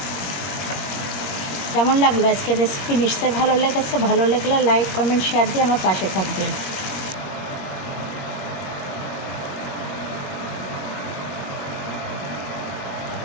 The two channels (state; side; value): late; right; 20 ms